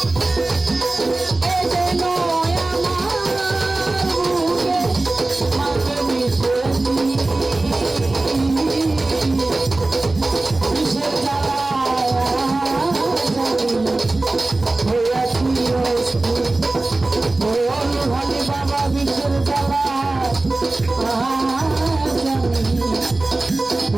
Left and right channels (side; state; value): left; quieter; 3.0 dB